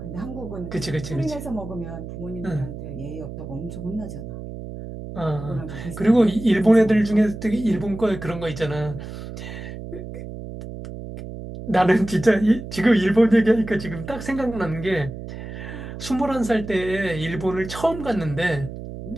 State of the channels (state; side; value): noise; right; hum, 10 dB below the sound